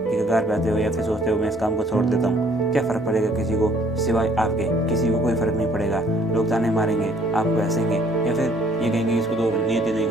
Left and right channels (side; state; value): both; normal; correlation 0.61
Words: कगार पे आते हो, या फिर सोचते हो मैं इस काम को छोड़ देता हूँ, क्या फ़र्क पड़ेगा किसी को, सिवाय आपके किसी को कोई फ़र्क नहीं पड़ेगा। लोग ताने मारेंगे, आपको हंसेंगे, या फिर ये कहेंगे इसको तो नीयत ही नहीं